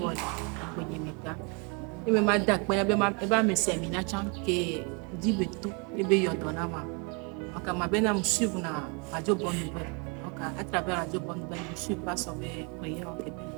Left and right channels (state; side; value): quieter; left; 33.0 dB